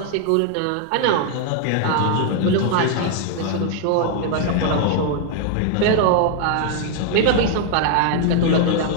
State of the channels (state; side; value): different; both; correlation 0.00